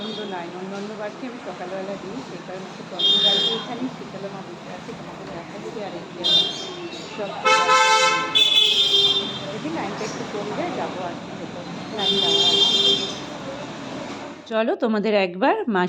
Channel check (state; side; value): identical; both; correlation 1.00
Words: লাইন। অন্যান্য বাড়িতে আমি সকালবেলা দিই, সেই কারণে একটু প্রথম গাড়িতে এখানে শীতলা মা বসে আছে, তোমাকে দেখা যাবে। আর এই সব দেখি লাইনটা একটু কমবে, যাবো আর কি, লাইন যাওয়া। চলো তোমাদের একবার মা